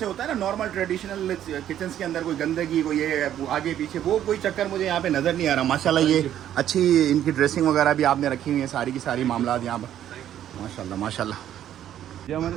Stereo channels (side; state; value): left; quieter; 11.1 dB